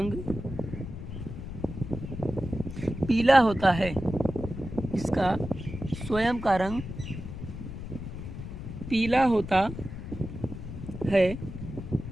पीला होता है। इसका स्वयं का रंग पीला होता है।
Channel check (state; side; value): noise; left; rumble, 9 dB below the sound